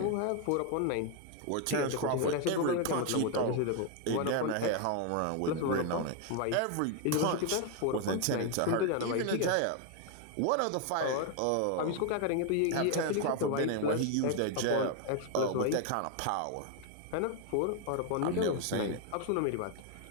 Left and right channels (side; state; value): both; different; correlation 0.01